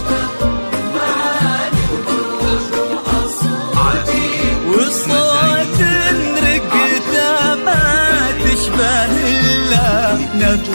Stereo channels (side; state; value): both; inverted; correlation -1.00